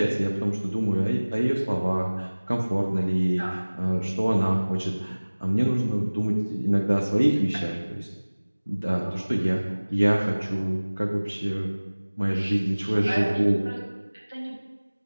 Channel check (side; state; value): both; inverted; correlation -1.00